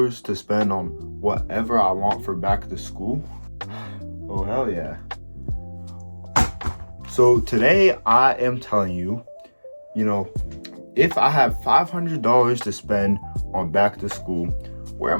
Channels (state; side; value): inverted; both; correlation -1.00